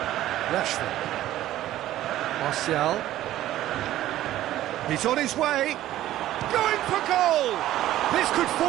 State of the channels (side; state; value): left; quieter; 13.9 dB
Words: Rashford. Martial. He's on his way. Going for goal! This could